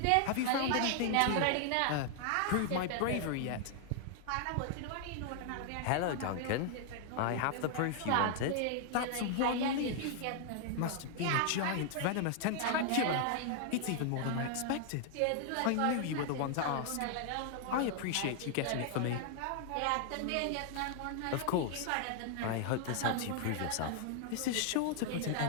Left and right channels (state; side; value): different; both; correlation 0.00